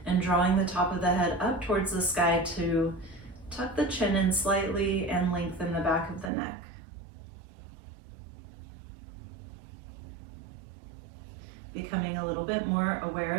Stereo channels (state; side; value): drops out; left; at 6.3 s